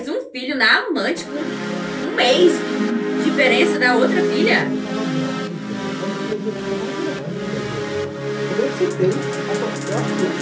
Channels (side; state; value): both; identical; correlation 1.00